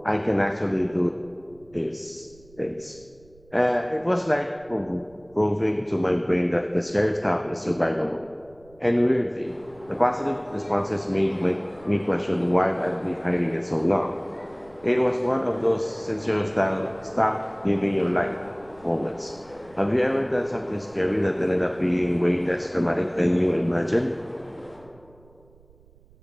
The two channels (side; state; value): right; noise; rumble, 28 dB below the sound